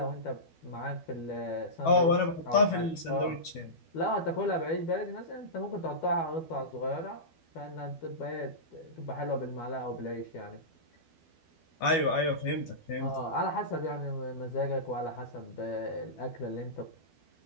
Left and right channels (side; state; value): right; late; 12 ms